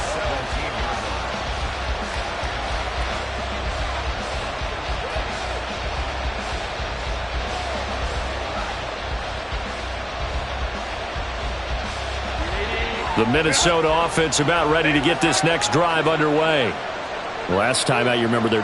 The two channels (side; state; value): both; identical; correlation 1.00